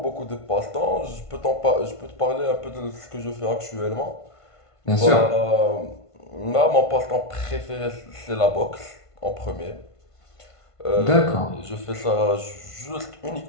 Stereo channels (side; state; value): right; late; 1.5 ms